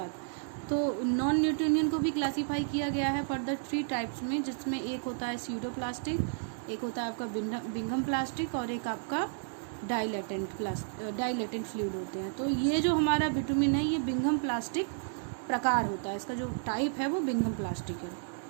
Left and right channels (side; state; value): left; silent; digital silence